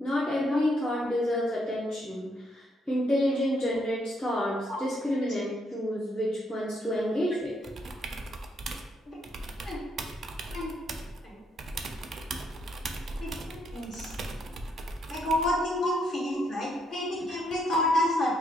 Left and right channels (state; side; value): normal; both; correlation 0.74